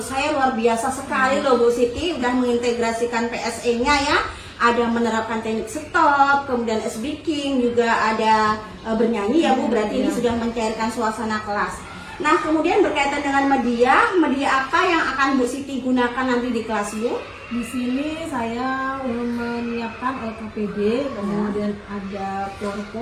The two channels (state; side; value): identical; both; correlation 1.00